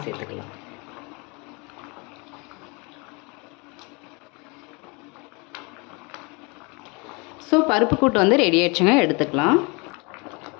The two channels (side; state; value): right; quieter; 29.2 dB